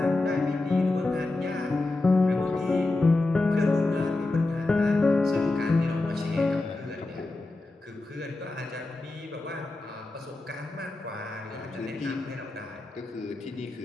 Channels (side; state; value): right; quieter; 3.0 dB